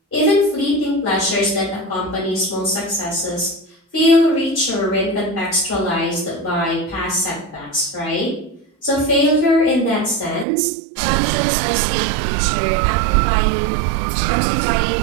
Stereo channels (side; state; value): left; drops out; at 10.5 s